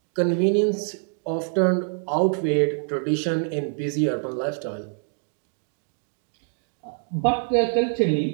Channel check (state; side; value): silent; left; 56 dB below the other